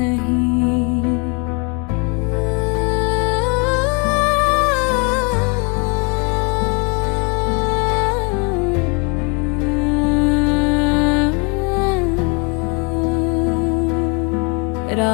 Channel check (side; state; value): right; quieter; 33.4 dB